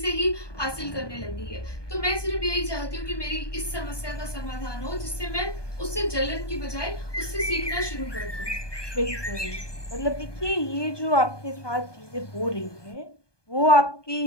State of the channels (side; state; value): right; late; 1.2 ms